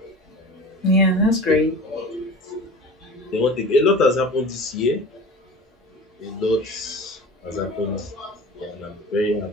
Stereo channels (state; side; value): normal; both; correlation 0.37